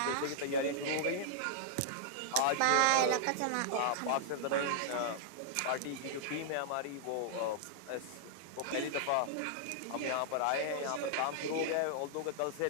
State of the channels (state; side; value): different; both; correlation -0.01